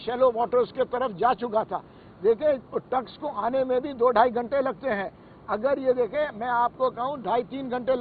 वाटर्स के तरफ जा चुका था। देखिए, टग्स को आने में भी 2-2.5 घंटे लगते हैं। अगर ये देखें, मैं आपको कहूँ 2.5-3 घंटे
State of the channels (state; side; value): identical; both; correlation 1.00